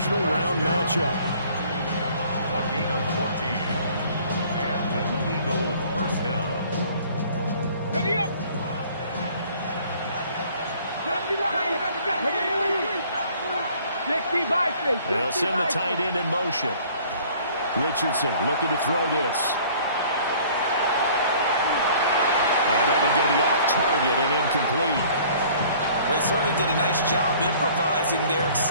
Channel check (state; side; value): inverted; both; correlation -0.53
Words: round matchup. A gain of 14. And an Eagle first down. Ready up. They'll send the tight end in motion. Richardson looking to throw this. And that one's going to be off target and incomplete. Well, he certainly did a nice job improvising there,